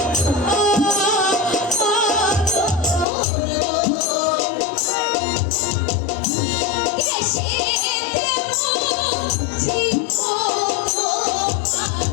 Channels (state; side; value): drops out; right; at 3.1 s